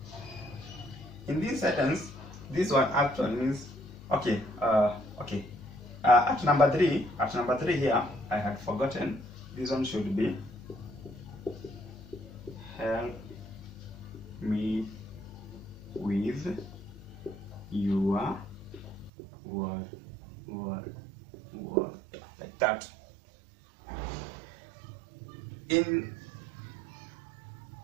In this sentence, this one actually means okay. At number three here, I had forgotten. This one should be help me with your word, like that. In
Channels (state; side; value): drops out; left; at 19.1 s